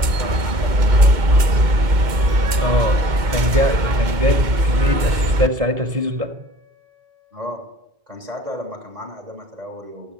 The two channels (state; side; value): late; left; 2.1 ms